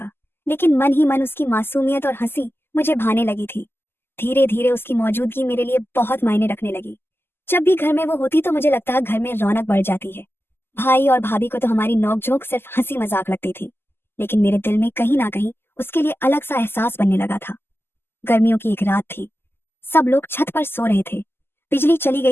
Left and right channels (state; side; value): late; right; 0.11 ms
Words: लेकिन मन ही मन उसकी मासूमियत और हंसी मुझे भाने लगी थी। धीरे धीरे उसकी मौजूदगी मेरे लिए बहुत मायने रखने लगी। जब भी घर में वो होती तो मुझे लगता घर में रौनक बढ़ जाती है। भाई और भाभी को तो हमारी नोकझोंक सिर्फ हंसी मजाक लगती थी, लेकिन मेरे दिल में कहीं ना कहीं उसके लिए अलग सा एहसास बनने लगा था। गर्मियों की एक रात थी। सब लोग छत पर सो रहे थे। बिजली चली